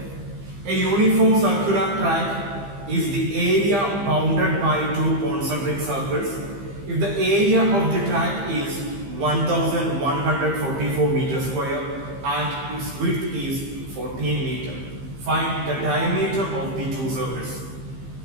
A uniform circular track is the area bounded by two concentric circles. If the area of the track is 1144 meters square and its width is 14 meters, find the diameter of the two circles.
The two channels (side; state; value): left; late; 15 ms